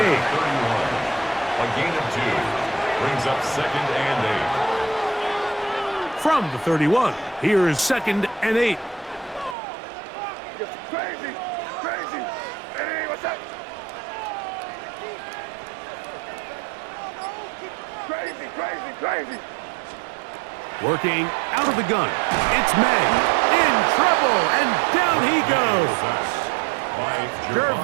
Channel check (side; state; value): left; drops out; at 9.6 s